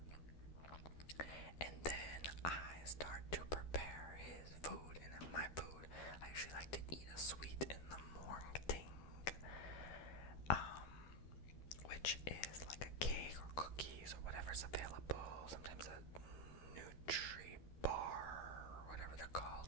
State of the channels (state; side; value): late; right; 12 ms